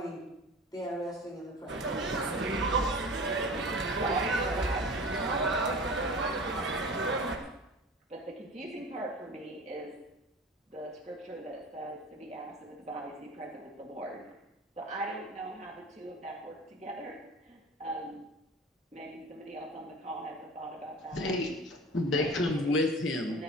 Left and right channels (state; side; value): normal; both; correlation 0.37